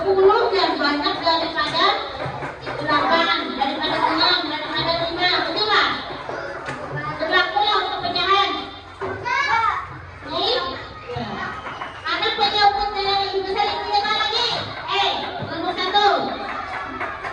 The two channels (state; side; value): identical; both; correlation 1.00